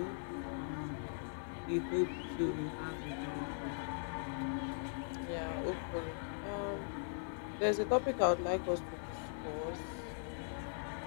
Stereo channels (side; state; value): right; silent; digital silence